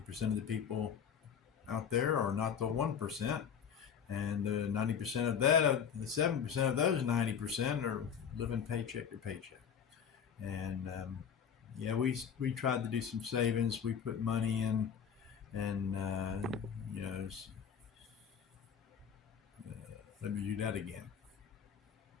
of the people out there are not the 1%. And 90% of that, the 7% of those 90% are living paycheck to paycheck. And yeah, we tried to do some savings. We put money in, and let me do that again.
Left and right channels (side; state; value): right; quieter; 7.5 dB